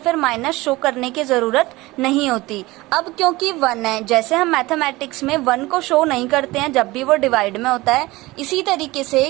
माइनस शो करने की जरूरत नहीं होती। अब क्योंकि 1 है, जैसे हम मैथमेटिक्स में 1 को शो नहीं करते हैं जब भी वो डिवाइड में होता है, इसी तरीके से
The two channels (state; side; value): quieter; left; 20.3 dB